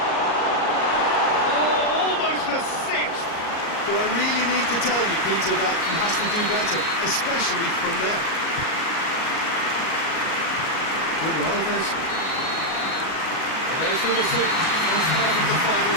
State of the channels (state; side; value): late; right; 38 ms